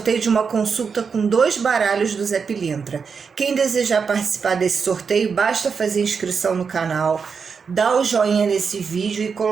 de uma consulta com 2 baralhos do Zé Pilintra. Quem desejar participar desse sorteio, basta fazer inscrição no canal, dar o joinha nesse vídeo e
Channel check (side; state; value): left; quieter; 5.8 dB